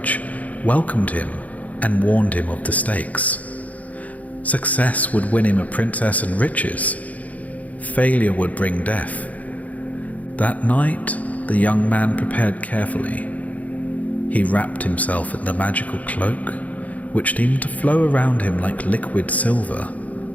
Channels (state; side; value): late; right; 0.072 ms